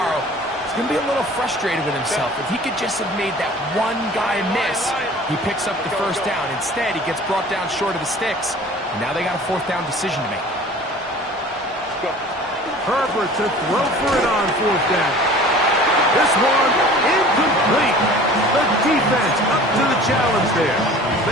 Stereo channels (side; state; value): both; normal; correlation 0.45